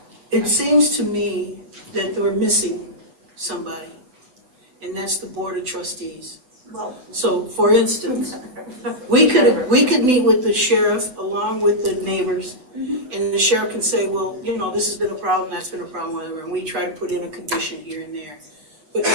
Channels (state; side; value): late; left; 7.9 ms